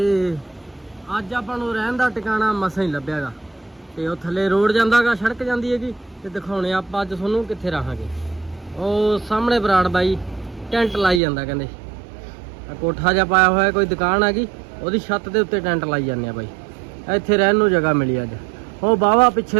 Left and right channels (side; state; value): left; drops out; at 11.2 s